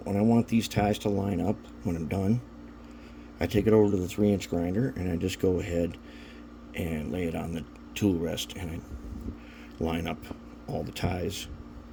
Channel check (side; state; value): both; identical; correlation 1.00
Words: I want these ties to line up, when I'm done, I take it over to the 3-inch grinder and I just go ahead and lay it on the tool rest and I line up all the ties